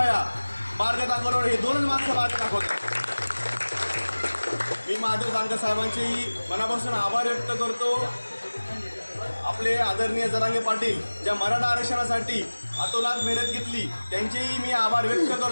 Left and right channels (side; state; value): both; inverted; correlation -1.00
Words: मार्ग दाखवणारे. हे दोनच माणसं मार्ग दाखवतात. मी महादेव जानकर साहेबांचेही मनापासून आभार व्यक्त करतो. आपले आदरणीय जरांगे पाटील ज्या मराठा आरक्षणासाठी अतोनात मेहनत घेतली त्यांचेही मी आभार व्यक्त